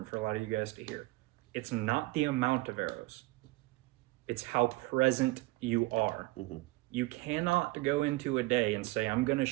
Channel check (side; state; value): left; quieter; 21.5 dB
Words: for a lot of you guys to hear. It's not the amount of arrows. It's how present you are. You cannot go into a day and say, I'm going to